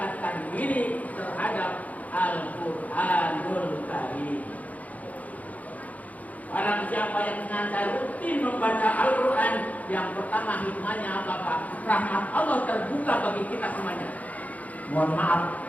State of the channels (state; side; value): late; right; 0.073 ms